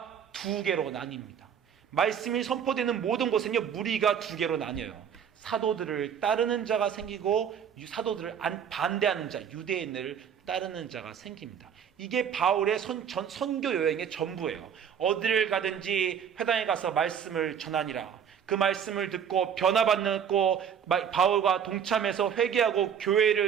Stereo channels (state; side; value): quieter; left; 8.1 dB